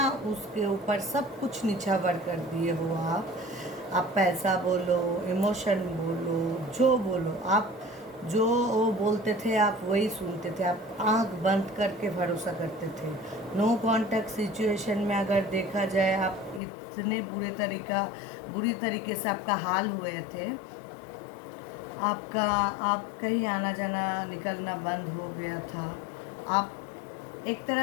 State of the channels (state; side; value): drops out; right; at 16.6 s